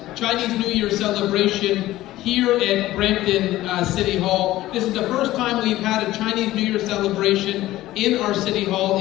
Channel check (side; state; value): right; quieter; 15.8 dB